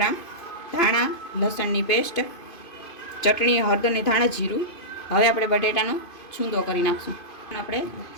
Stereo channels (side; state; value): right; late; 2.5 ms